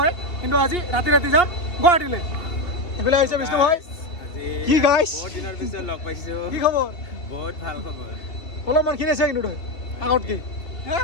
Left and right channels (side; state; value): right; late; 2.8 ms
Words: কিন্তু আজি ৰাতি যাম গুৱাহাটীলৈ এইফালে আহিছে বিষ্ণু ভাই কি গাইছ বহুত দিনৰ পিছত লগ পাইছোঁ কি খবৰ বহুত ভাল খবৰ অলপমান খিনিছে কিন্তু তই আগত কি